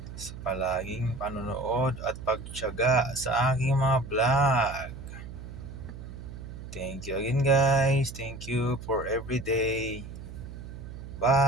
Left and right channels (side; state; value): right; noise; hum, 12 dB below the sound